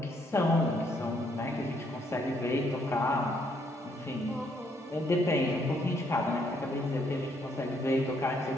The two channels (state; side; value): normal; both; correlation 0.71